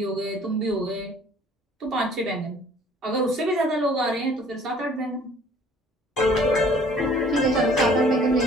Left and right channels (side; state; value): both; normal; correlation 0.54